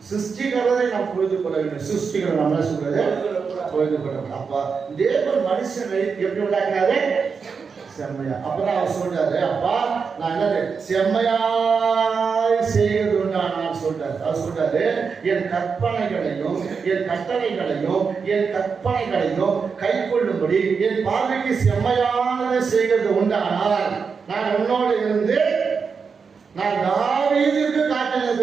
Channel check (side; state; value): left; quieter; 5.6 dB